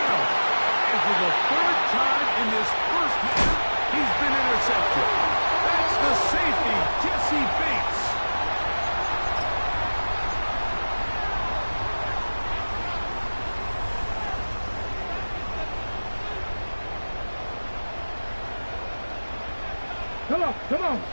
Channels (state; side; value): inverted; both; correlation -1.00